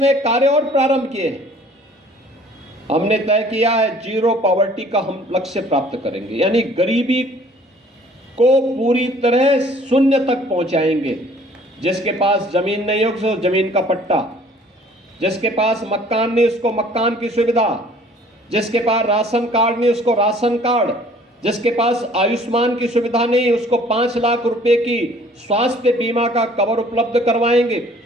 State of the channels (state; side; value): normal; both; correlation 0.54